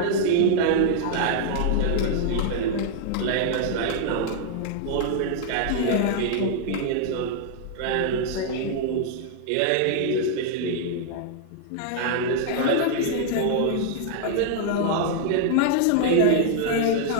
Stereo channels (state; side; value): different; both; correlation -0.01